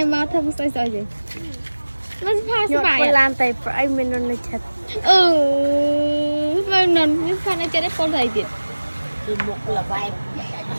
យមកធ្វើមកស្អីស្អីចឹងមិនផាសុបាយប៉ូឡានតែប្រអីមិននៅចិត្តមិននៅផានៅចិត្តឯប៉ូទៅអីទៀតគឺមុខល្បែង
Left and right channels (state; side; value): inverted; both; correlation -1.00